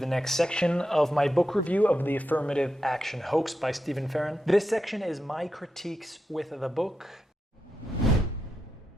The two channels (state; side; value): normal; both; correlation 0.87